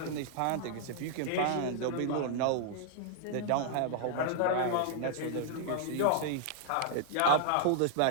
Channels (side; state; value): both; different; correlation -0.01